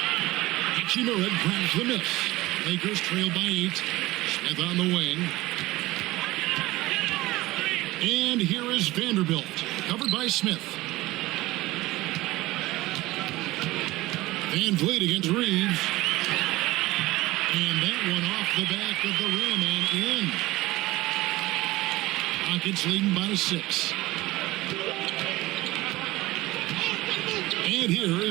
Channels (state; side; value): quieter; left; 18.9 dB